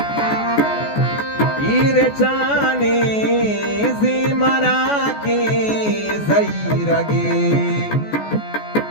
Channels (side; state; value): right; late; 14 ms